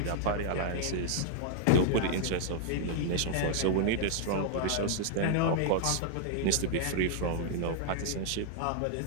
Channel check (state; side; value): different; both; correlation -0.01